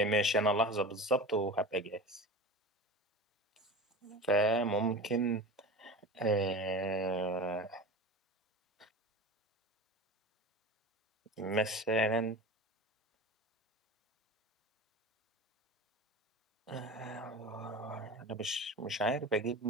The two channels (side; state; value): both; normal; correlation 0.32